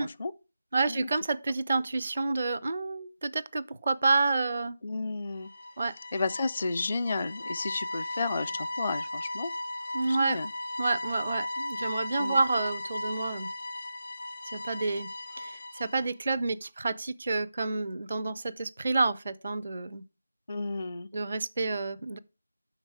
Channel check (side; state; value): both; inverted; correlation -0.90